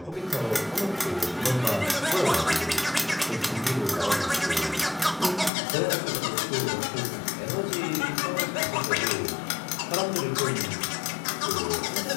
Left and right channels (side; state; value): right; drops out; at 5.5 s